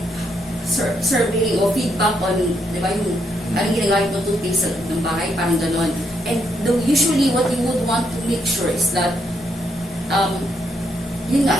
survey o feedback on, di ba, yung anong ginagawa yung toothpaste sa ng bahay, parang gano'n. And usually what you would want to make sure is that, yun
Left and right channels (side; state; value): both; normal; correlation 0.76